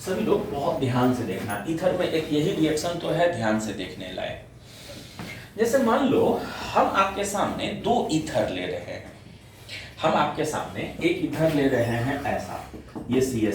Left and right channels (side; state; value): both; identical; correlation 1.00